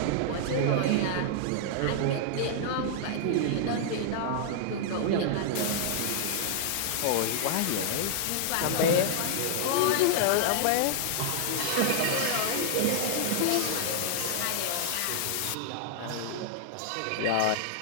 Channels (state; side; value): different; both; correlation -0.01